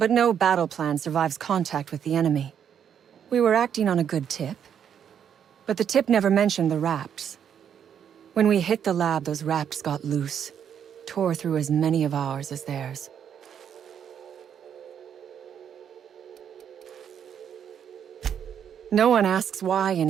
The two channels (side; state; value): left; quieter; 8.5 dB